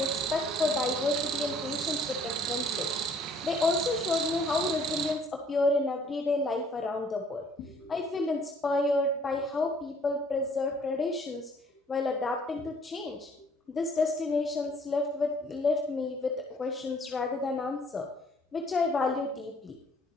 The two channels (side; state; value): both; normal; correlation 0.59